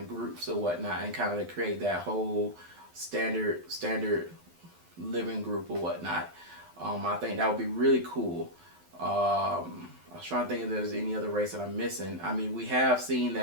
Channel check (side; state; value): left; late; 12 ms